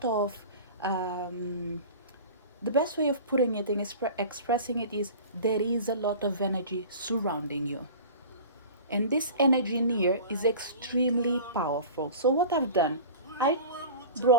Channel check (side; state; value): both; inverted; correlation -0.37